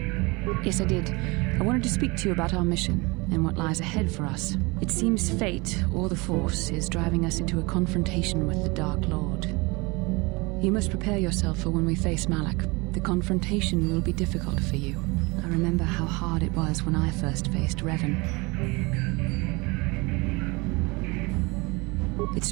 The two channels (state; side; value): quieter; left; 25.9 dB